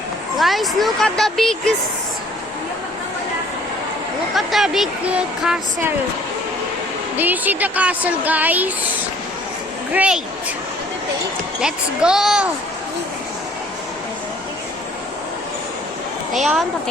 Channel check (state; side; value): normal; both; correlation 0.57